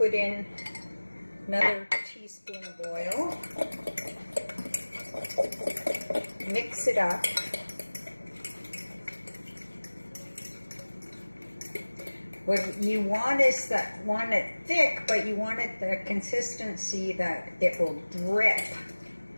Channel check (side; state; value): both; inverted; correlation -1.00